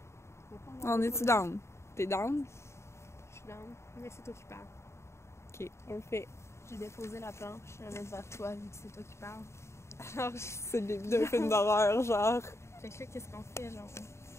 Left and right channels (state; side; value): late; right; 0.13 ms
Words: On va pas On est-tu down? T'es down? Je suis down, mais c'est toi qui parles. Ok, on le fait. J'ai déposé la planche, je vais la mettre vers toi vu que c'est toi qui parles. Alors, C'est le début d'un film d'horreur, genre. fait que là, qu'est-ce qu'on fait, genre?